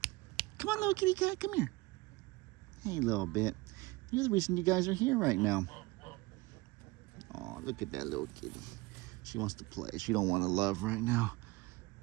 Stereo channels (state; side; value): quieter; left; 21.9 dB